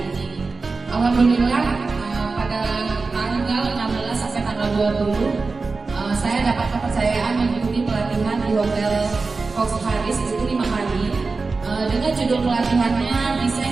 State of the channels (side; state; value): left; quieter; 4.0 dB